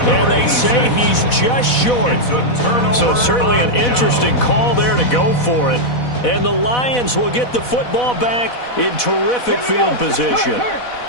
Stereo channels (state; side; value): late; right; 4.1 ms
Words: And they say he's just short. So certainly an interesting call there to go for it. And the Lions will get the football back in terrific field position.